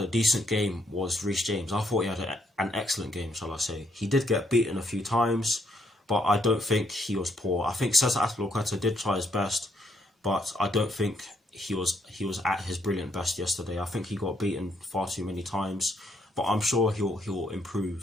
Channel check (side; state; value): both; normal; correlation 0.73